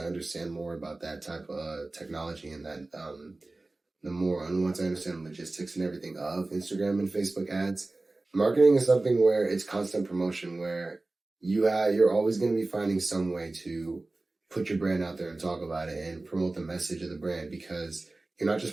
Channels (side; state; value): left; quieter; 3.1 dB